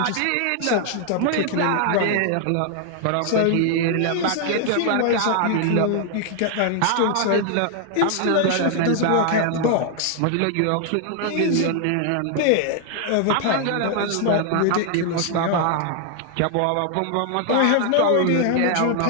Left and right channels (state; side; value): different; both; correlation 0.00